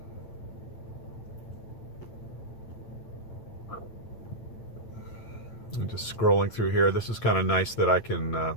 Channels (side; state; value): right; late; 8.9 ms